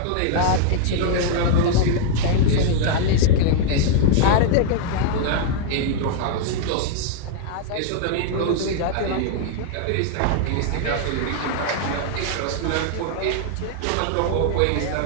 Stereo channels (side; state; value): both; different; correlation -0.01